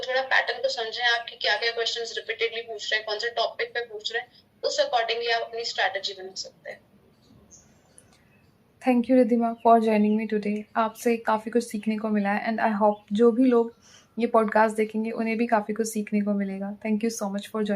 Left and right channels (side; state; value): both; identical; correlation 1.00